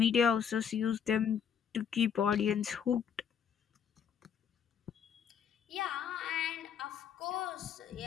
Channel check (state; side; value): quieter; right; 7.9 dB